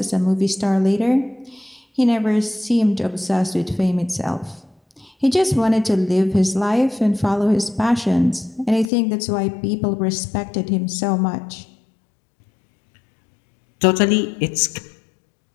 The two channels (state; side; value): drops out; right; at 8.9 s